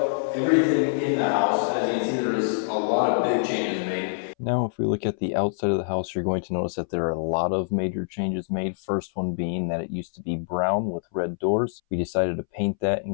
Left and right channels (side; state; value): right; silent; 61 dB below the other